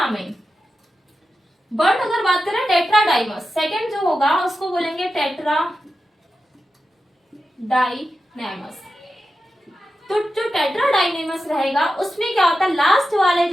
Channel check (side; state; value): both; normal; correlation 0.91